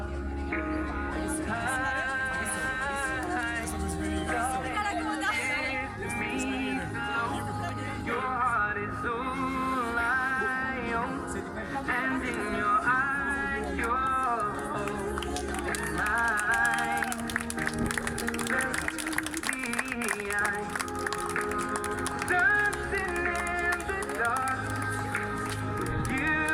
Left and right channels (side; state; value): both; identical; correlation 1.00